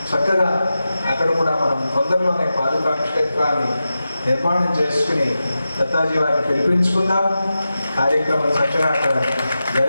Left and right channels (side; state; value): both; inverted; correlation -0.92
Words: చక్కగా అక్కడ కూడా మనం తొందరలోనే పాదుకా క్షేత్రాన్ని నిర్మాణం చేసుకుని దత్తాజీ వారిని పిలిపించుకుందాం. కార్యక్రమం చక్కగా అక్కడ